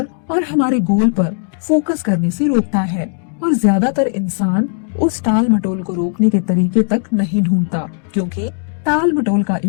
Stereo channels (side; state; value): right; silent; 56 dB below the other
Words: और हमारे गोल पर फोकस करने से रोकता है। और ज्यादातर इंसान उस टाल मटोल को रोकने के तरीके तक नहीं ढूंढता, क्योंकि टाल मटोल का